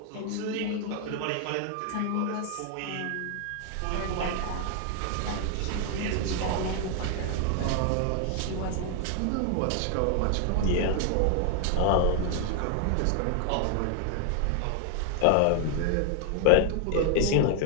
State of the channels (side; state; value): both; different; correlation 0.00